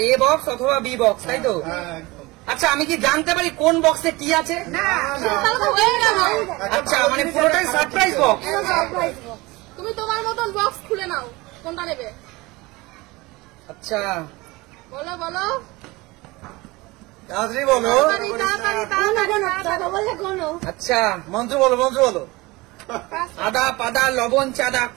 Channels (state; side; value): quieter; left; 22.2 dB